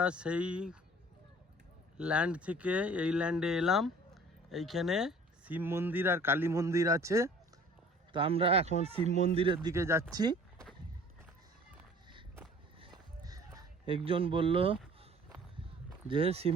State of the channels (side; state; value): both; normal; correlation 0.50